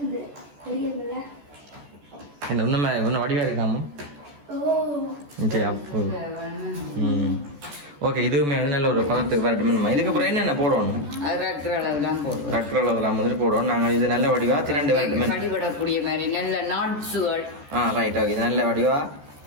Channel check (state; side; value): late; left; 14 ms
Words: என்ன இன்னும் வடிவா இருக்காம சரி அப்போ ஓகே இதுவுமே வந்து நல்ல ஒரு பதத்துக்கு வரட்டுமே இதுக்கப்புறம் என்னென்ன போடணும் ரக்கு அளவுலாம் வந்துட்டு போடுவோம் நாங்கள் இது நல்ல வடிவா திரண்டு வரட்டுமே ரைட் ஓகே இது நல்ல வடிவா